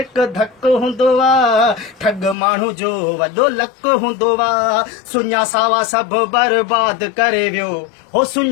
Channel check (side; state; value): right; drops out; at 2.4 s